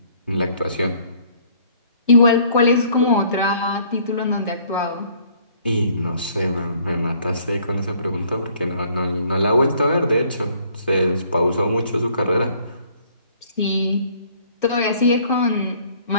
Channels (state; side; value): inverted; both; correlation -0.60